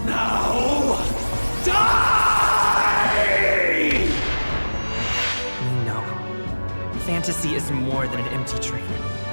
Now, die! No. Fantasy is more than an empty dream.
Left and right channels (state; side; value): inverted; both; correlation -1.00